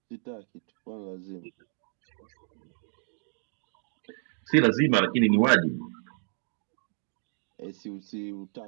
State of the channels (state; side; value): silent; left; 58 dB below the other